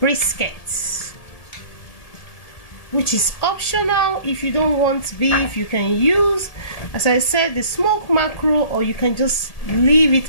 which is optional. If you don't want beef, you can use, as I said, the smoked mackerel, or you can just leave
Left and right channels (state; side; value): late; right; 1.8 ms